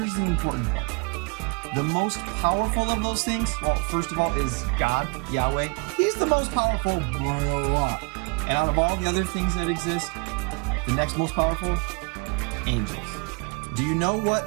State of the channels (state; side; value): quieter; left; 31.2 dB